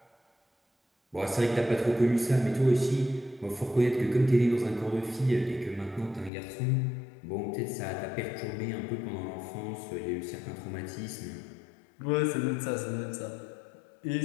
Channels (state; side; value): drops out; right; at 6.3 s